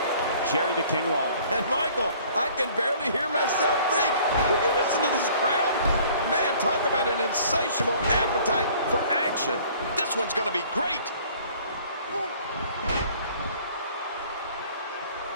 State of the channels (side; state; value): both; inverted; correlation -0.54